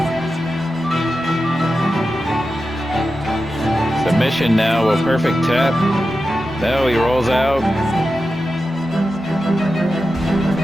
Submission now, a perfect tap. Now he rolls out.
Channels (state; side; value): normal; both; correlation 0.91